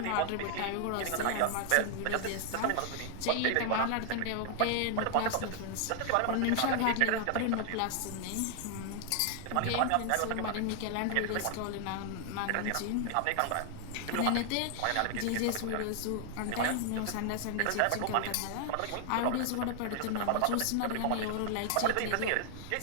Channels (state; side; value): different; both; correlation 0.00